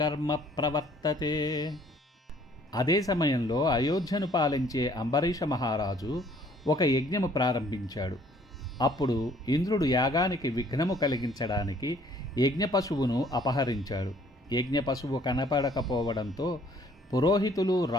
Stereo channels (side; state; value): both; normal; correlation 0.59